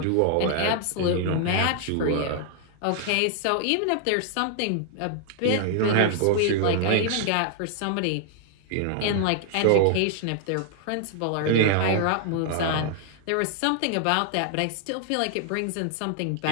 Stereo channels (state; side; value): different; both; correlation 0.00